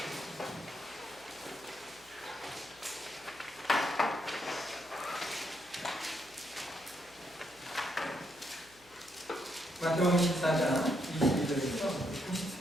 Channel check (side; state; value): left; noise; hum, 28 dB below the sound